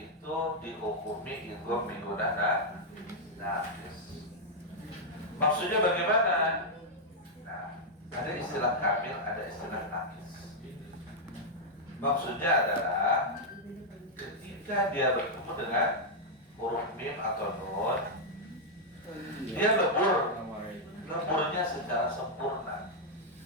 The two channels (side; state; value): both; normal; correlation -0.04